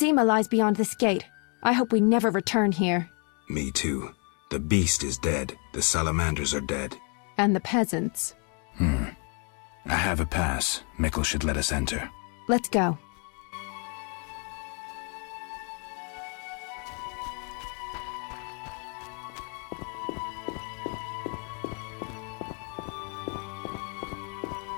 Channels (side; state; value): right; quieter; 36.9 dB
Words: lies beyond this gate. I hope we never return here. Me too. The beast is dead. The salamanders are dead. And the peasants. I have a pass. Mikkel should let us enter. Let's go.